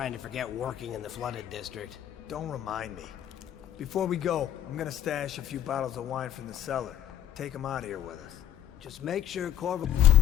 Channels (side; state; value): right; quieter; 10.4 dB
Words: to forget working in the flooded district. Don't remind me. Before we go, I'm gonna stash a few bottles of wine from the cellar. Take them out of here with us. Just make sure Corvo